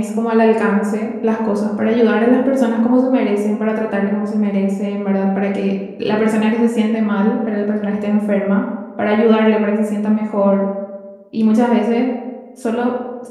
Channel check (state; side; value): identical; both; correlation 1.00